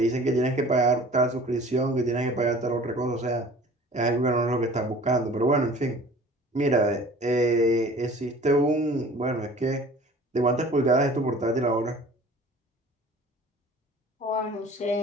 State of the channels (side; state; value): both; normal; correlation 0.46